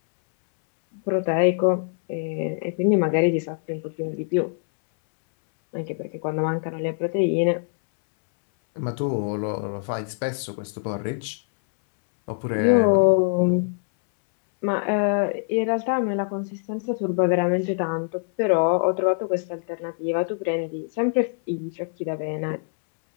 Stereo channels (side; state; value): right; silent; 63 dB below the other